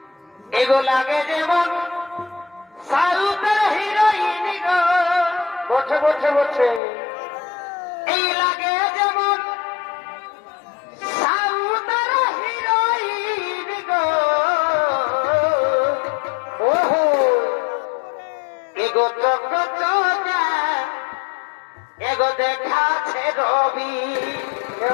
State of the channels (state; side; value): drops out; right; at 6.8 s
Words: এগো লাগে যেমন সাউথের হিরোইন গো বসে বসে বসে এই লাগে যেমন সাউথের হিরোইন গো ওহো এগো চোখ চোখা এগো দেখাছে রবি